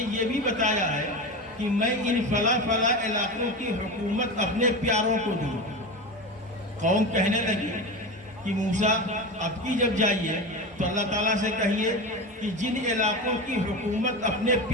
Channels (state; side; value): normal; both; correlation 0.24